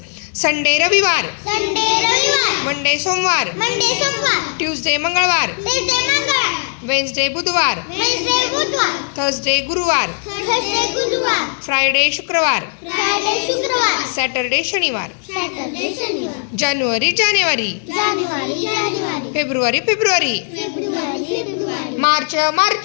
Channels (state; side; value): silent; right; 68 dB below the other